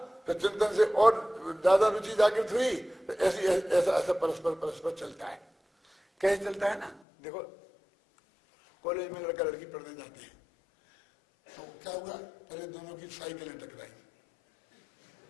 फिर चिंतन से और ज्यादा रुचि जागृत हुई, तो ऐसा परस्पर चलता है। कैसे चलता है ना, देखो कॉलेज में लड़का लड़की पढ़ने जाते हैं, तो क्या हुआ, पहले दोनों की साइकिलें टकराई,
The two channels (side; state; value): right; drops out; at 7.0 s